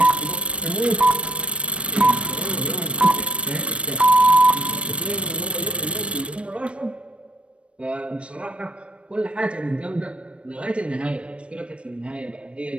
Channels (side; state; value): left; late; 0.060 ms